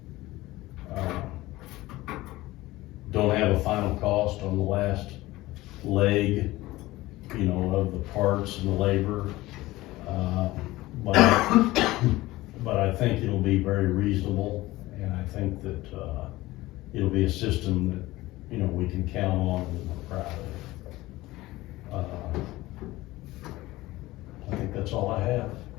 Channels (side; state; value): right; quieter; 18.4 dB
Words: Don't have a final cost on the last leg, you know, of the parts and the labor, but I think it'll be very reasonable, and I think that it'll be a system that, you know, we can count on and we're proud of. I think that's all I have.